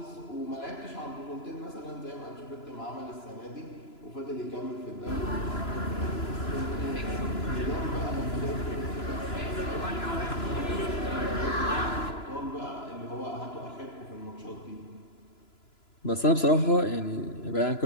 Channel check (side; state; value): right; late; 2.9 ms